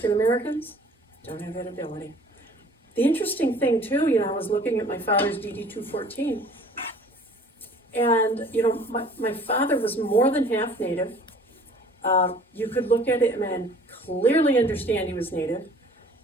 Americans don't have that ability. The interesting thing too, you know, I was looking at my father's DD 214, and you know, my father was more than half Native. You could look at him and clearly understand he was Native,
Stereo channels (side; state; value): both; normal; correlation 0.50